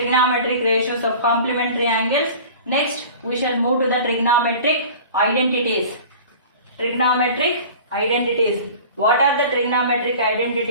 ratios of complementary angles. Next we shall move to the trigonometric identities. Trigonometric identities. What are the trigonometric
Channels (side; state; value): both; inverted; correlation -0.41